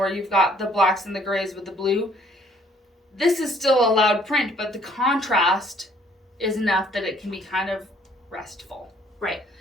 you've got the blacks and the grays with the blue, this is still a loud print, but the contrast is enough that it can be kind of restful. Right.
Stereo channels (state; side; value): normal; both; correlation 0.61